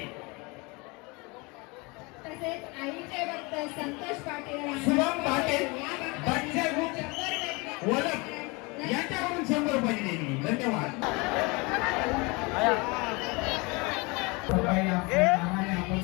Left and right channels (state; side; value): quieter; right; 27.1 dB